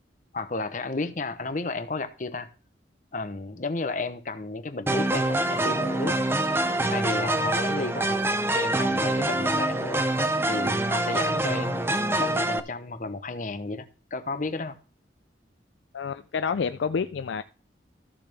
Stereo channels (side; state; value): both; normal; correlation 0.45